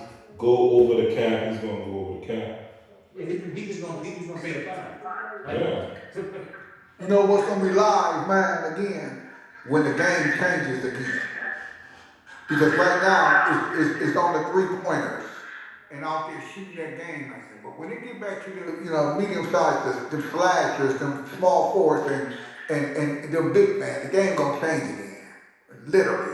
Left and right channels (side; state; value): both; identical; correlation 1.00